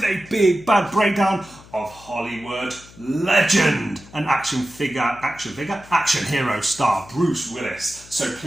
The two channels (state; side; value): noise; left; hum, 22 dB below the sound